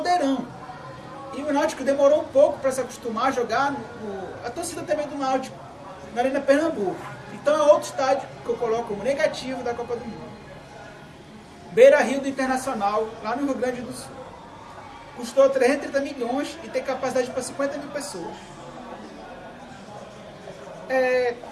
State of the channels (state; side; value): identical; both; correlation 1.00